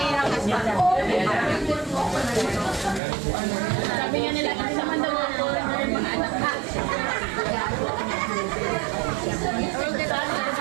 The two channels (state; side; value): drops out; left; at 3.0 s